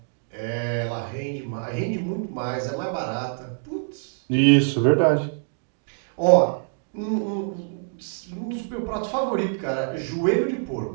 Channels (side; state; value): left; silent; 62 dB below the other